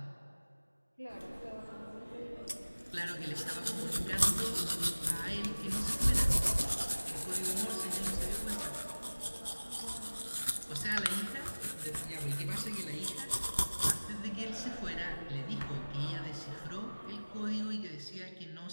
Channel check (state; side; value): inverted; both; correlation -1.00